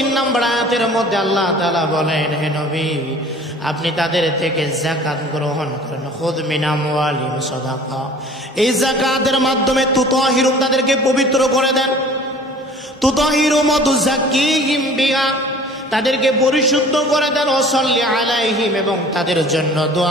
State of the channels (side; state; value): both; normal; correlation 0.47